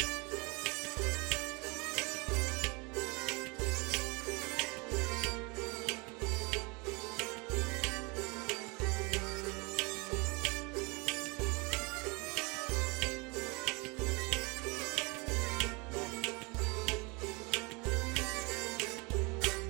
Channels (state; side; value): quieter; left; 28.2 dB